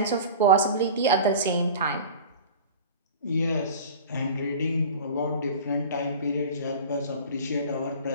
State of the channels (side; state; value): both; inverted; correlation -0.37